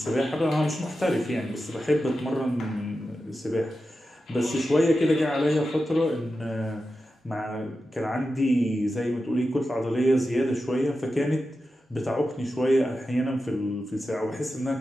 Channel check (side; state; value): both; normal; correlation 0.91